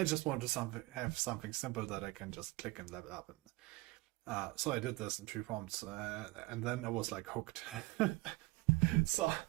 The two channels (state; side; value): quieter; left; 22.4 dB